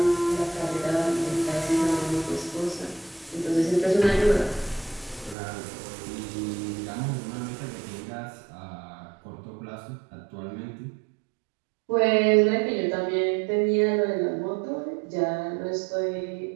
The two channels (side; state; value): left; drops out; at 5.4 s